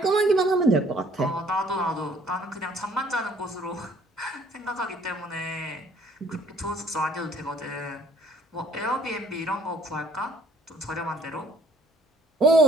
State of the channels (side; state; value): both; normal; correlation 0.59